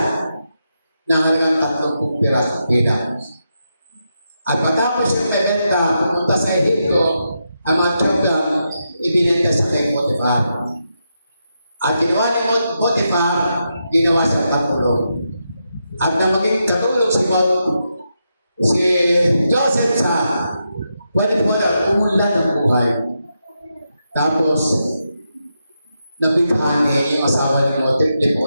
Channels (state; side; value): inverted; both; correlation -0.85